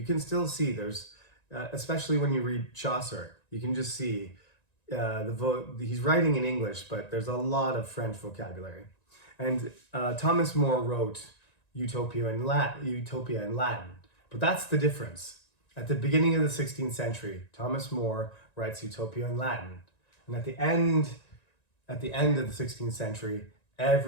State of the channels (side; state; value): right; late; 1.9 ms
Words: can still see there's, especially when you read Chaucer, you can just see he's writing in English, but there's a lot of French vocabulary. And Thomas More wrote Utopia in Latin, but that's the difference. At the beginning of the 16th century, Thomas More writes Utopia in Latin, and at the end of the 16th century,